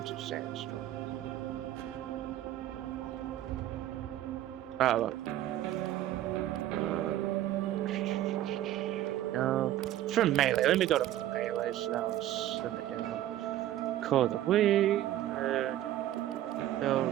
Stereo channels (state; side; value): quieter; left; 13.2 dB